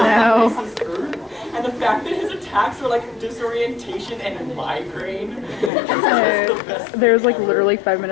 And the fact that his attacks are like disorientation and migraine. There's like literally 5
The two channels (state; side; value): drops out; right; at 5.7 s